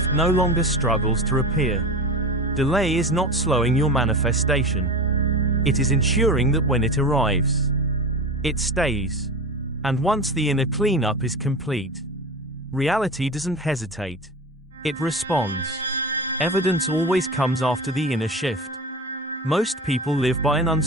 no longer struggles to appear. Delay is not slowing your manifestation. It is ensuring that when it arrives, it stays. And once the inner cleanup is complete, reality doesn't hesitate. It responds. Evidence always comes after the inner shift. Most people live by an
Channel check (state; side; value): normal; both; correlation 0.28